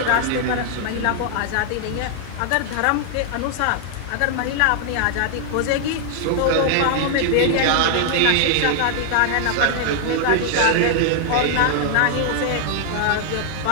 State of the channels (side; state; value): both; different; correlation -0.01